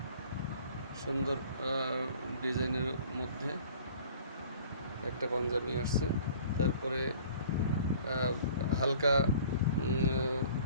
সুন্দর ডিজাইনের মধ্যে একটা পাঞ্জাবি আসছে। তারপরে হালকা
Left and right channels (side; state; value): both; inverted; correlation -0.50